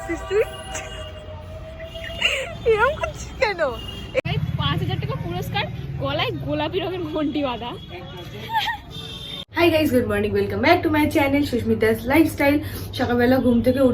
তুই? এরকম করছিস কেন? ৫,০০০ টাকা পুরস্কার, গলায় গোলাপি রঙের ঘন্টি বাঁধা। Hi guys, good morning, welcome back to my channel Susmita's lifestyle. সকালবেলা ঘুম থেকে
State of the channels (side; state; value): both; identical; correlation 1.00